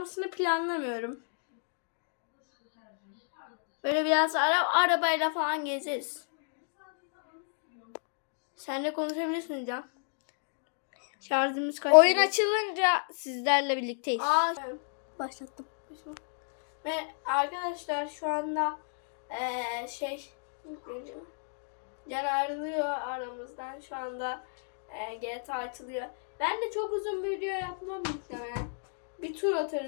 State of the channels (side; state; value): right; silent; digital silence